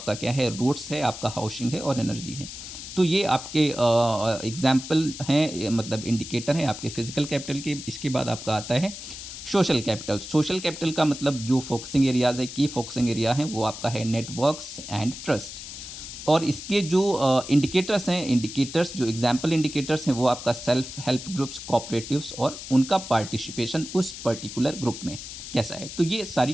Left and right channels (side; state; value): left; noise; hiss, 11 dB below the sound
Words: क्या है? रोड्स है, आपका हाउसिंग है और एनर्जी है। तो ये आपके एग्ज़ाम्पल हैं, मतलब इंडिकेटर हैं आपके फिज़िकल कैपिटल के। इसके बाद आपका आता है सोशल कैपिटल। सोशल कैपिटल का मतलब जो फोकसिंग एरियाज़ है, की फोकसिंग एरिया है, वो आपका है नेटवर्क्स एंड ट्रस्ट। और इसके जो इंडिकेटर्स हैं, इंडिकेटर्स जो एग्जाम्पल इंडिकेटर्स हैं वो आपका सेल्फ हेल्प ग्रुप्स, कोऑपरेटिव्स और उनका पार्टिसिपेशन उस पर्टिकुलर ग्रुप में कैसा है। तो ये सारी